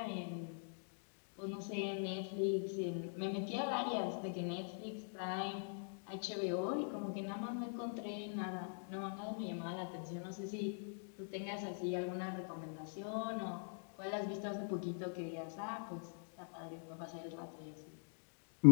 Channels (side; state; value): right; silent; digital silence